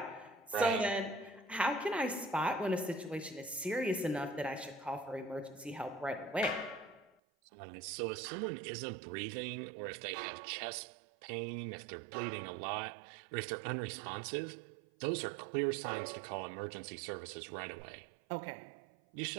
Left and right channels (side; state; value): left; drops out; at 7.1 s